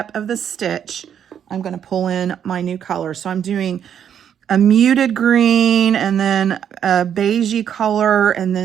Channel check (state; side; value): quieter; left; 8.8 dB